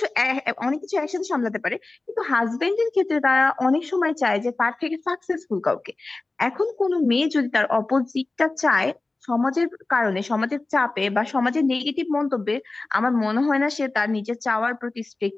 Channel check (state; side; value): quieter; right; 3.3 dB